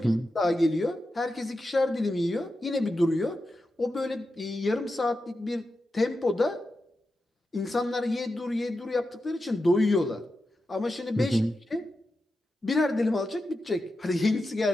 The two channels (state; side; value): normal; both; correlation 0.90